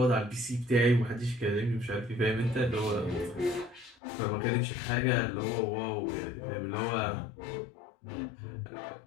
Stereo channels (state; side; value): drops out; right; at 4.0 s